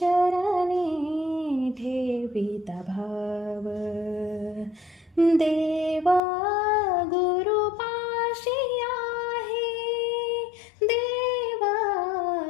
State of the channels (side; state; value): right; drops out; at 6.2 s